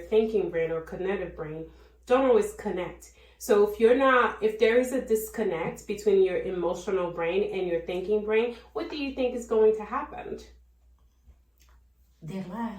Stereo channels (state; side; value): identical; both; correlation 1.00